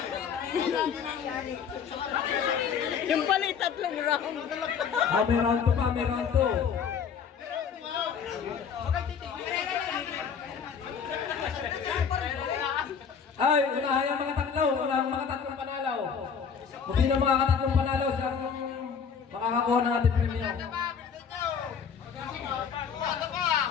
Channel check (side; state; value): right; quieter; 6.8 dB